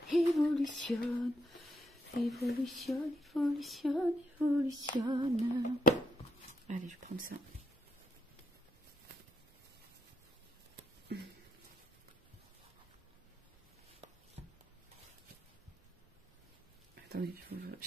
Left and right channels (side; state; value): both; normal; correlation 0.76